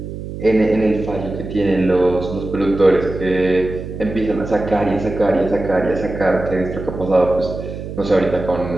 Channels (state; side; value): noise; right; hum, 9 dB below the sound